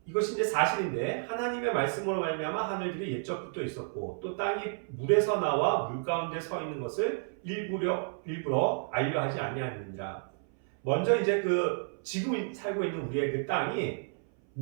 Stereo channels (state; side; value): silent; left; 57 dB below the other